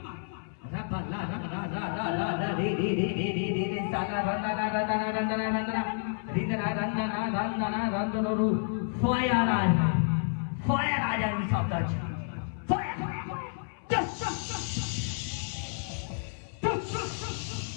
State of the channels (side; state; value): right; silent; 58 dB below the other